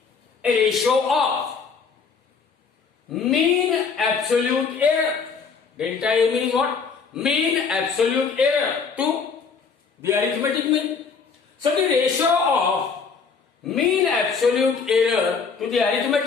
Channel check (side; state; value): right; quieter; 5.4 dB